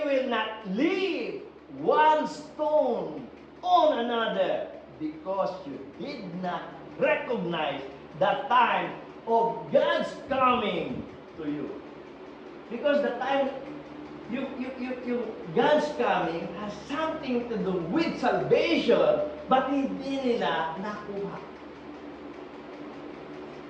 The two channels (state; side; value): identical; both; correlation 1.00